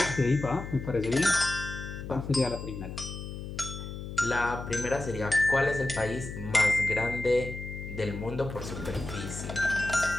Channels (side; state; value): left; noise; hum, 8 dB below the sound